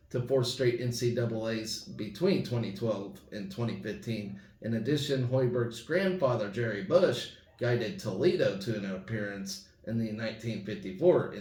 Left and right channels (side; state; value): both; identical; correlation 1.00